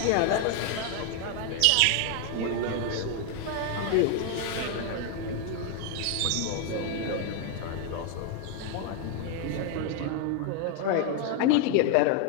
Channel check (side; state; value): both; different; correlation 0.01